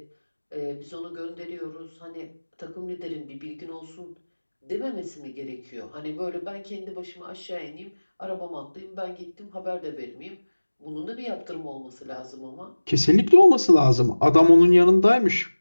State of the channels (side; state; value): both; inverted; correlation -1.00